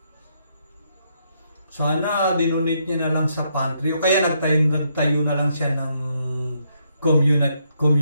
Sana dinonate niya na lang sa pantry o kaya nagtayo na lang siya ng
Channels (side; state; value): both; inverted; correlation -0.75